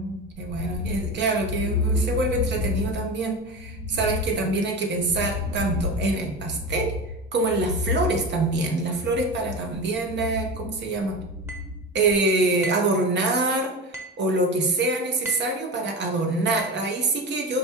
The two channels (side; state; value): both; normal; correlation 0.26